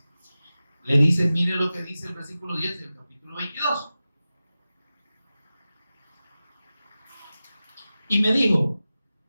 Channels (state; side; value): inverted; both; correlation -0.95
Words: Le dice, mire lo que dice el versículo 10 del capítulo 22. Y me dijo,